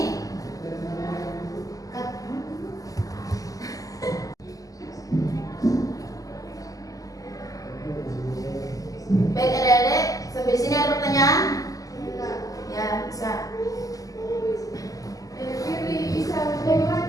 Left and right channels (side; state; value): right; late; 0.17 ms